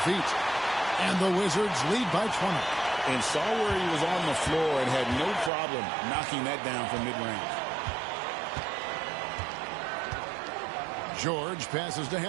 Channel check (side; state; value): left; drops out; at 5.5 s